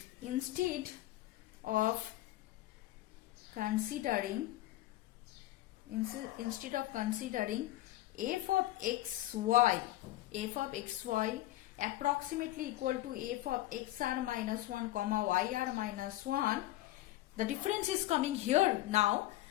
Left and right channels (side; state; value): right; quieter; 16.0 dB